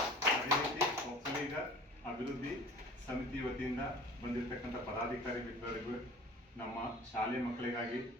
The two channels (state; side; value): normal; both; correlation 0.43